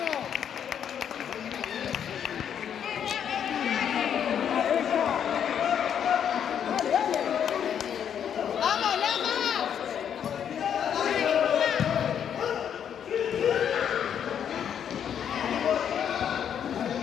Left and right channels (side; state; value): right; quieter; 8.7 dB